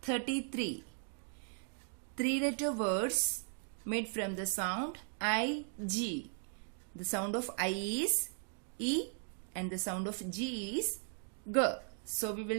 33. 3-letter words made from the sound I-G. The sound of I is E and the sound of G is G. So we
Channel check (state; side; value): silent; left; 53 dB below the other